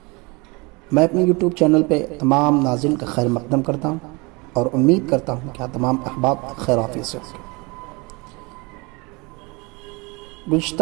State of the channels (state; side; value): quieter; left; 27.1 dB